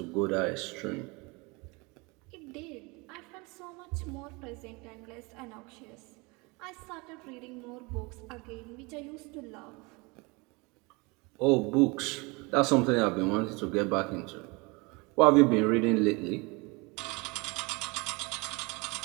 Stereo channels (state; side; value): quieter; left; 27.2 dB